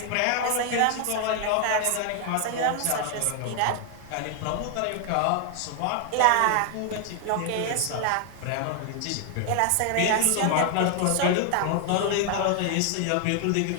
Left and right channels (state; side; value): different; both; correlation 0.00